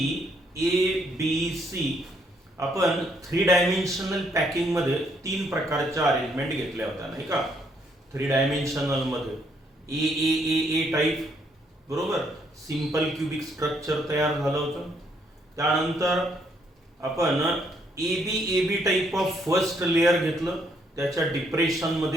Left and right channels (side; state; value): both; normal; correlation 0.71